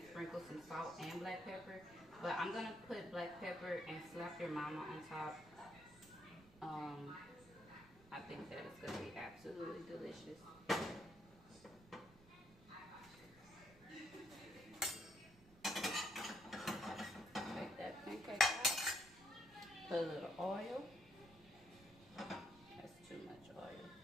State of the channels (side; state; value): right; noise; rumble, 22 dB below the sound